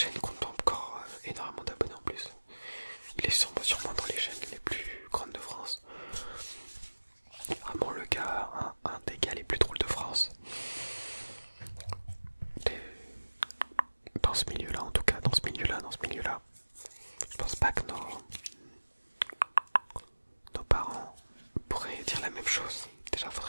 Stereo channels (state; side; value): inverted; both; correlation -1.00